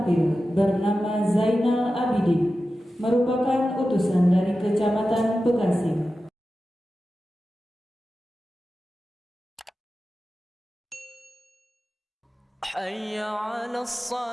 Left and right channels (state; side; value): normal; both; correlation 0.93